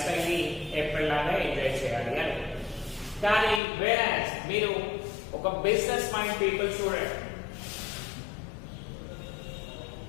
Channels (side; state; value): right; drops out; at 3.6 s